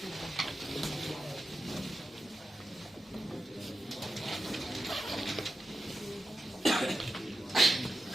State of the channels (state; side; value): normal; both; correlation 0.91